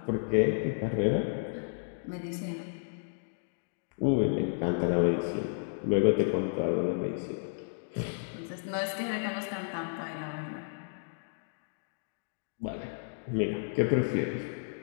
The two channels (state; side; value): silent; right; digital silence